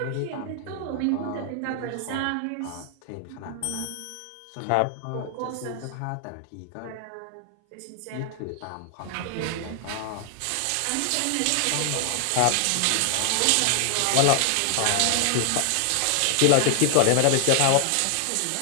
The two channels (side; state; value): both; different; correlation 0.00